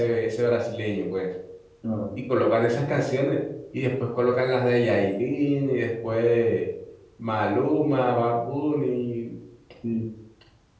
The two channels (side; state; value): both; identical; correlation 1.00